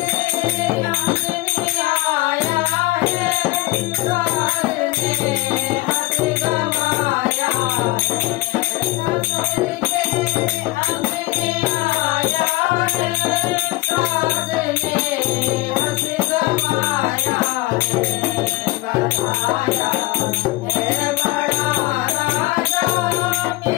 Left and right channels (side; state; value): right; quieter; 20.2 dB